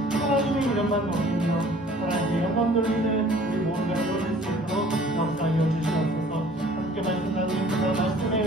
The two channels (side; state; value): both; normal; correlation 0.52